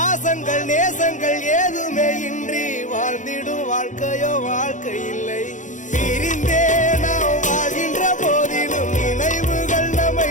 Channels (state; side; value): late; right; 0.36 ms